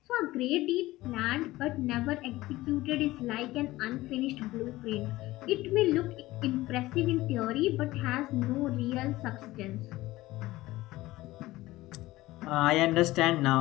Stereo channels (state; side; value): quieter; right; 17.9 dB